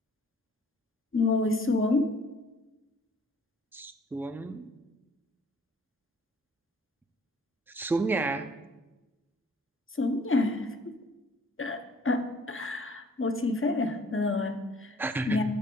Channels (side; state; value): both; normal; correlation 0.57